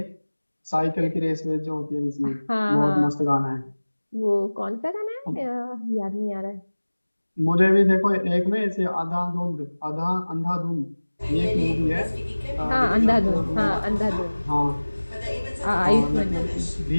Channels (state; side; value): inverted; both; correlation -1.00